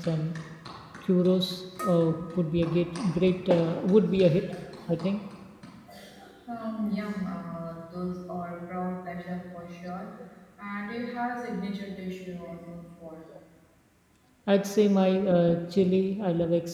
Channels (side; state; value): both; identical; correlation 1.00